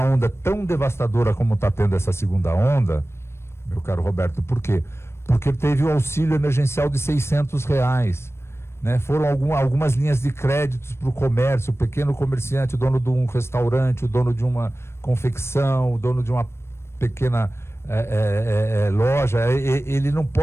tão devastadora como está tendo essa segunda onda, meu caro Roberto. Por quê? Porque teve o auxílio emergencial de R$600. né? Foram algumas linhas de créditos para o comércio, o pequeno comerciante, o dono de um restaurante, o dono de uma confecção, o dono de uma pequena loja. Ele não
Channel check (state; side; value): late; right; 0.12 ms